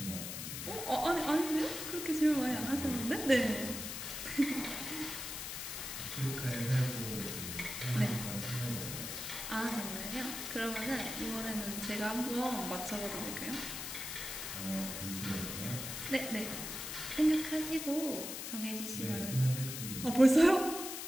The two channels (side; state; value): left; noise; hiss, 6 dB below the sound